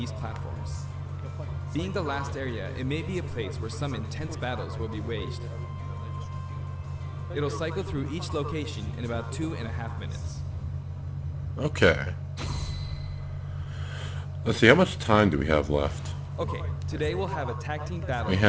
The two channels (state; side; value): identical; both; correlation 1.00